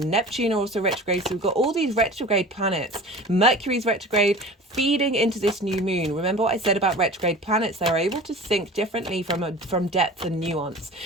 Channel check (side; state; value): both; normal; correlation 0.38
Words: Neptune are also retrograde. So we've got all these retrograde planets. Mercury's retrograde, feeding into this new moon. Remember what I said about retrograde planets? They're able to think differently from depth and nuance.